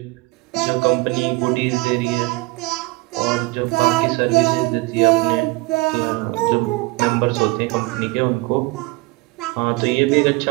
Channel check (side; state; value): left; quieter; 23.5 dB